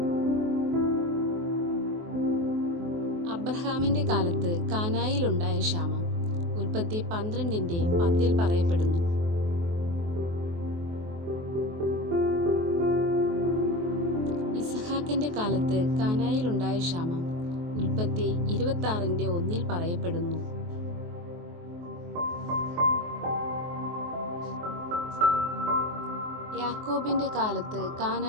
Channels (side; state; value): left; late; 23 ms